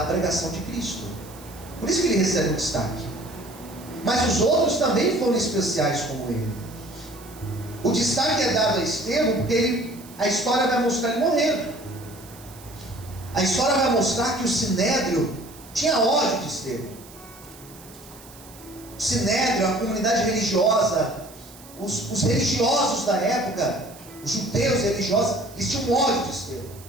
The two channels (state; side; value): noise; right; hiss, 20 dB below the sound